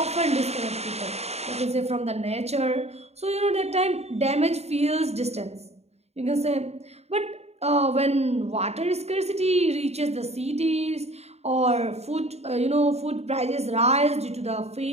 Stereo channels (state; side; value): late; left; 0.31 ms